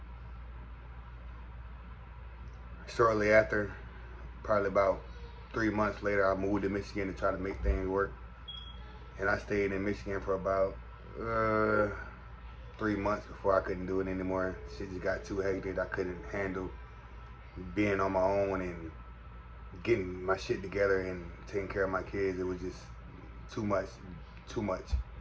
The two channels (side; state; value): both; identical; correlation 1.00